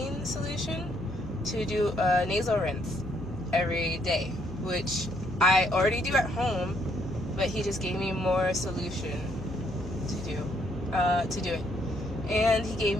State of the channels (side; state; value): left; noise; hum, 13 dB below the sound